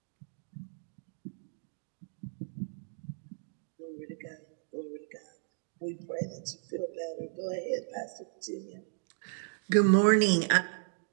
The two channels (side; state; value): left; silent; digital silence